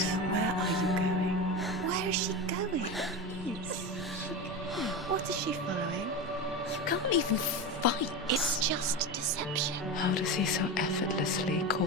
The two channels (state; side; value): normal; both; correlation 0.22